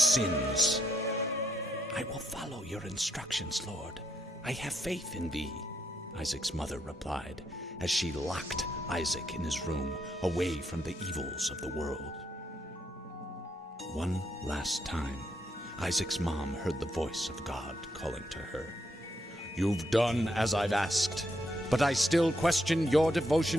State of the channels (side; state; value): both; normal; correlation 0.76